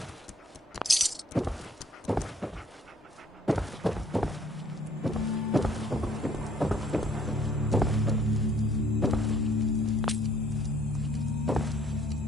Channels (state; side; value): normal; both; correlation 0.61